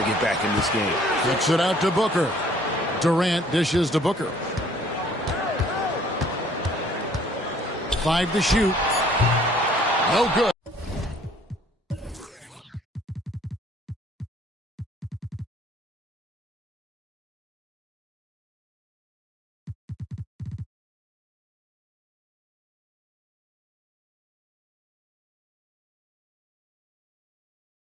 get back in this game. Kicks it out to Booker. Durant dishes to Booker. 5 to shoot. No good.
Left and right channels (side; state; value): both; normal; correlation 0.58